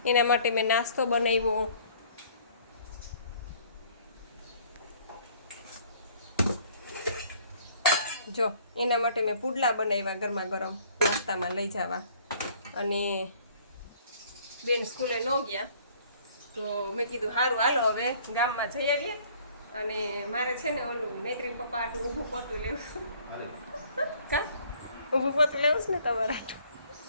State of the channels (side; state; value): both; inverted; correlation -0.57